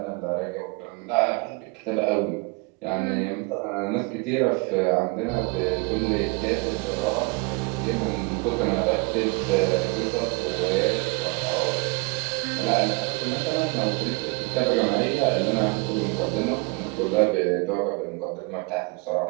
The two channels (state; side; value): quieter; left; 29.0 dB